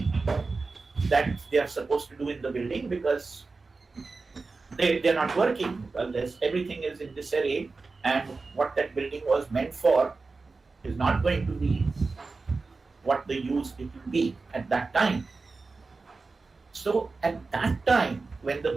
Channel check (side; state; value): left; quieter; 4.0 dB